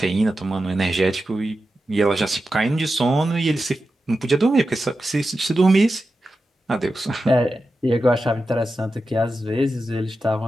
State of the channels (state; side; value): normal; both; correlation 0.91